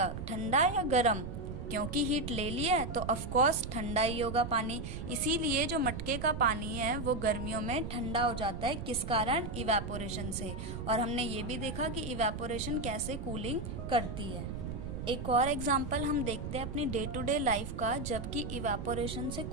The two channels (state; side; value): noise; right; rumble, 6 dB below the sound